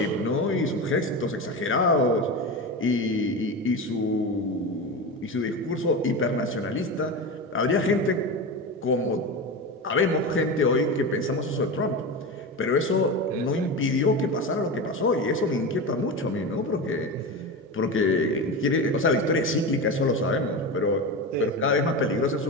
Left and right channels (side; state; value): both; normal; correlation 0.23